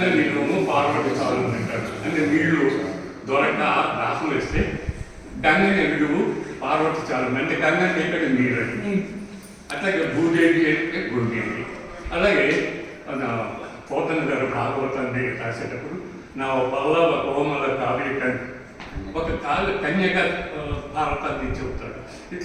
నీళ్ళము పార్వతి చాలు అంటారు. అంటే నీళ్లు దొరక దాహం వేస్తే గంగని ఎడుగు పార్వతి చాలు అంటే గంగని ఎక్కడ నీళ్ళని. అట్లాగే భూదేవి అంటే భూదేవి. అలాగే మన పోతన గారు భాగవతాన్ని రాసేటప్పుడు నా పల్లవ కోమల కావ్య ఒక కన్యగా భారతాన్ని చెబుతాడు.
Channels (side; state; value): both; identical; correlation 1.00